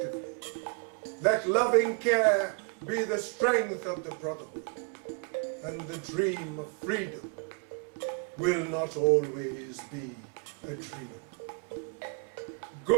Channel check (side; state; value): left; quieter; 33.6 dB